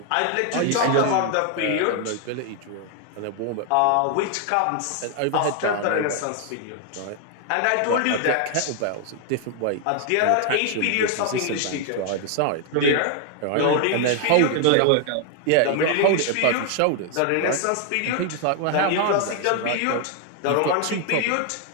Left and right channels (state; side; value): different; both; correlation 0.00